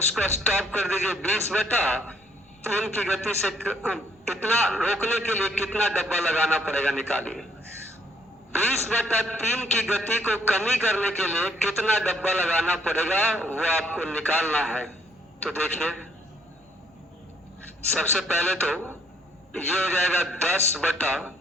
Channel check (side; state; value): both; normal; correlation 0.66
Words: स्टॉप कर दीजिए 20/3 की गति से। इतना रोकने के लिए कितना डब्बा लगाना पड़ेगा निकालिए। 20/3 की गति को कमी करने के लिए कितना डब्बा लगाना पड़ेगा वो आपको निकालना है। तो देखिए सबसे पहले तो ये हो जाएगा